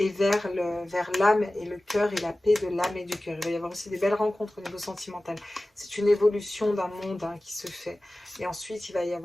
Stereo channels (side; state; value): both; normal; correlation 0.97